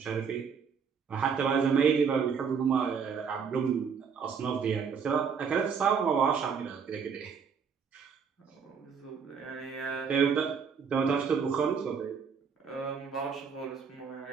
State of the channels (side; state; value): left; quieter; 6.3 dB